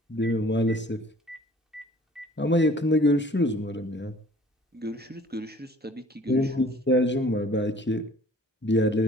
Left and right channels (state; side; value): normal; both; correlation 0.52